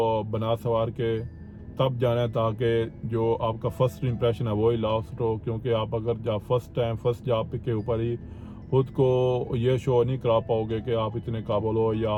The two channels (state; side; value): identical; both; correlation 1.00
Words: बना सवार के तब जाना है, ताकि जो आपका फर्स्ट इंप्रेशन है वो ही लास्ट हो। क्योंकि आप अगर जब फर्स्ट जॉब के ऊपर ही खुद को ये शो नहीं करा पाओगे कि आप इतने काबिल हो या